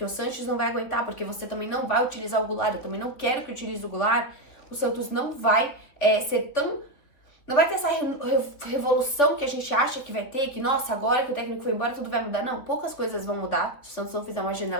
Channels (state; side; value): late; right; 3.7 ms